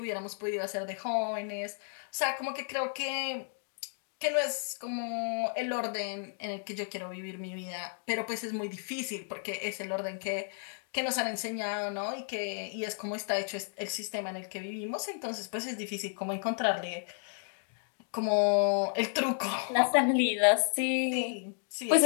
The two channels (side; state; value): right; silent; 56 dB below the other